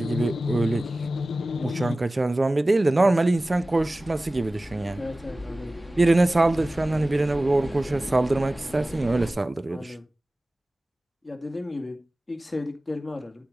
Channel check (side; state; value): both; normal; correlation 0.97